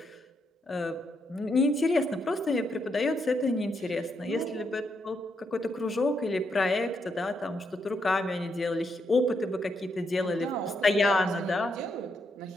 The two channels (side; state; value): both; normal; correlation 0.79